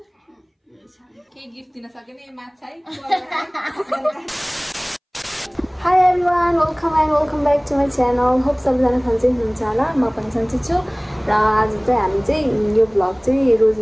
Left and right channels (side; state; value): both; identical; correlation 1.00